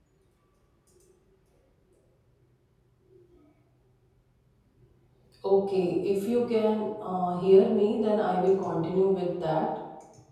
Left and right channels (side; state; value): both; identical; correlation 1.00